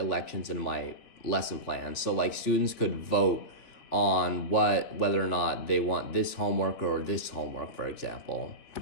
in my lesson plan, so like students could vote on whether or not they want this homework or this homework, for example.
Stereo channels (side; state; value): right; late; 3.6 ms